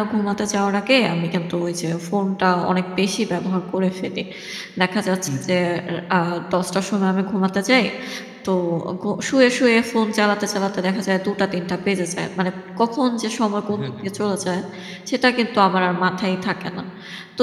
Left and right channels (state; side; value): identical; both; correlation 1.00